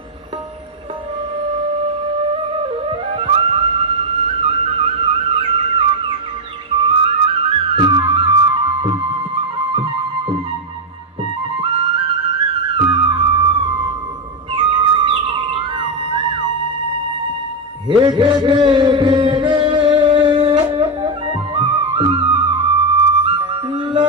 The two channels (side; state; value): both; normal; correlation 0.05